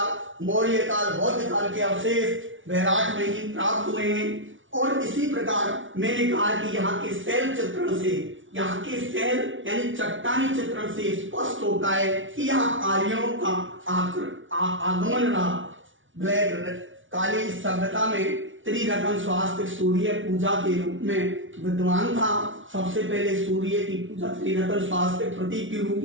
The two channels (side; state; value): left; late; 0.56 ms